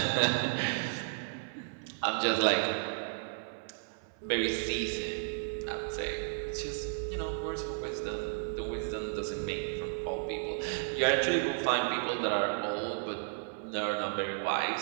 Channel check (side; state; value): left; silent; 56 dB below the other